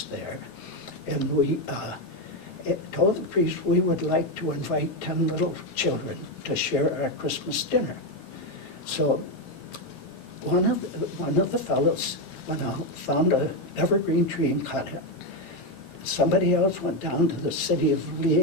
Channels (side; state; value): right; late; 15 ms